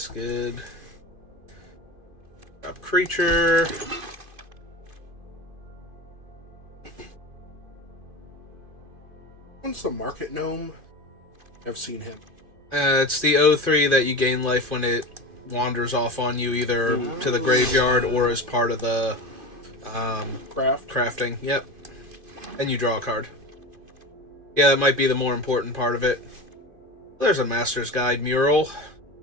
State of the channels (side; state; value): left; late; 2.5 ms